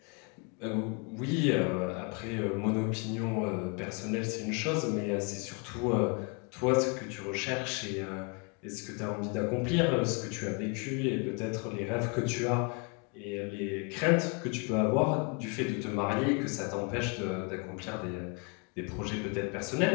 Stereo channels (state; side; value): quieter; right; 33.7 dB